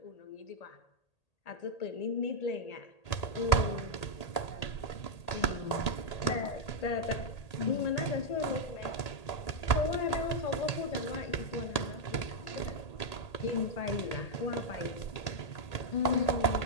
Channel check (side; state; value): right; late; 1.8 ms